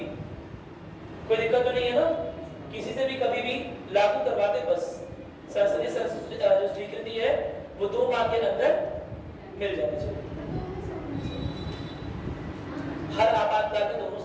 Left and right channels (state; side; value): identical; both; correlation 1.00